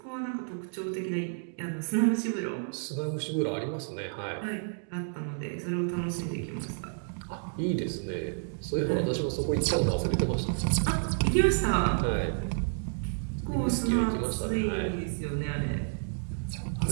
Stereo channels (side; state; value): left; silent; digital silence